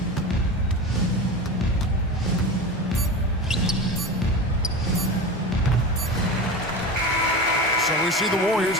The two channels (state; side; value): normal; both; correlation 0.27